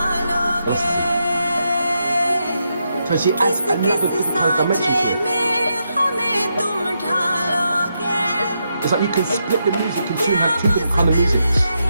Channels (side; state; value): both; inverted; correlation -0.83